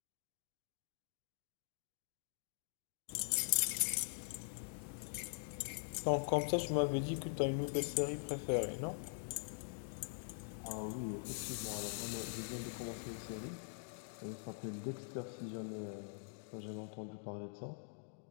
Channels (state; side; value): silent; right; digital silence